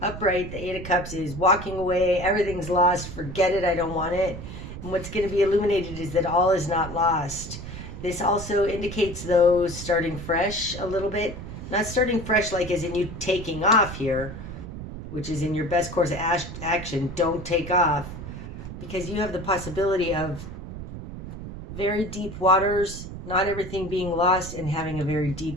Upright, the Eight of Cups is walking away. Everything's lost. Forget it. I don't want it. And what's going to be illuminated is that all is not lost. This also indicates, though, starting fresh a little bit. Not starting fresh like as in you taking off here, which is in your best course of action. Don't take off, because you have the possibility of very deep waters, not everything being lost, and having a very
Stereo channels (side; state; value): right; noise; rumble, 10 dB below the sound